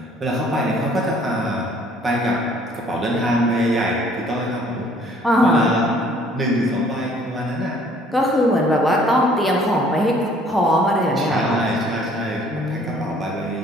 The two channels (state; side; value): normal; both; correlation 0.58